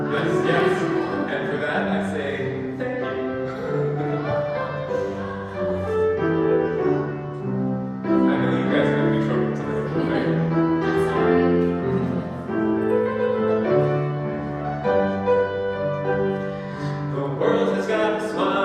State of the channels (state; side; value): identical; both; correlation 1.00